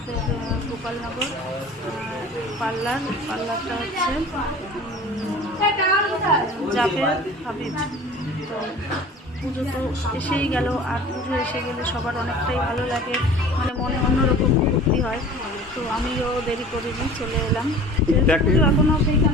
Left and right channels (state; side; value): normal; both; correlation 0.42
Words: গোপালনগর পার্লারটা হচ্ছে জাবের হাবিব। তো পুজো তো এসেই গেল, আর পুজো এসে গেলে সবার অনেকটাই ভালো লাগে, মানে মনে অন্যরকম ফুর্তি হয়। তো আমিও দেরি করিনি, চলে এলাম। পুজো এখনও